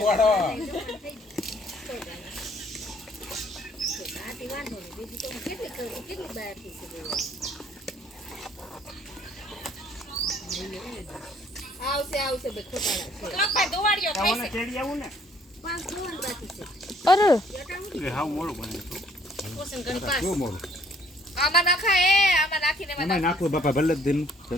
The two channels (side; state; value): both; normal; correlation 0.61